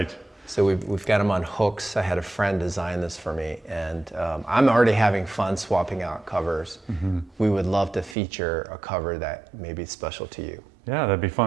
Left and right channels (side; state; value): left; drops out; at 8.2 s